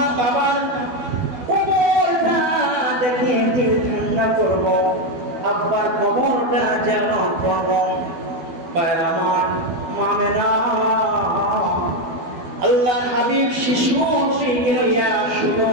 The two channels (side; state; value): left; late; 12 ms